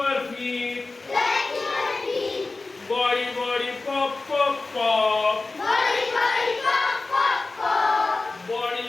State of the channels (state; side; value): quieter; right; 3.5 dB